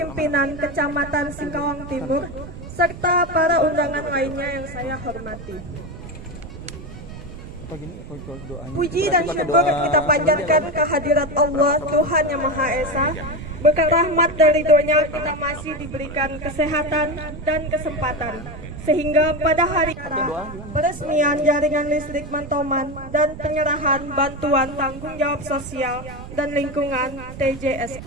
Kecamatan Singkawang Timur, serta para undangan lainnya yang saya hormati. Puji dan syukur kita panjatkan kehadirat Allah Tuhan Yang Maha Esa. Berkat rahmat dan ridhonya kita masih diberikan kesehatan dan kesempatan, sehingga pada hari peresmian jaringan listrik Mantoman dan penyerahan bantuan tanggung jawab sosial dan lingkungan TJS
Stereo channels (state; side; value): noise; right; rumble, 13 dB below the sound